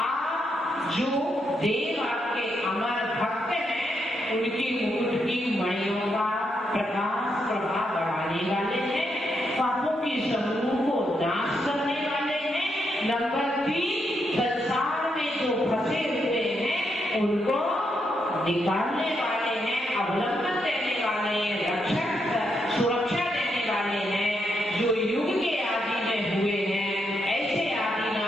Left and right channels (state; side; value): normal; both; correlation 0.80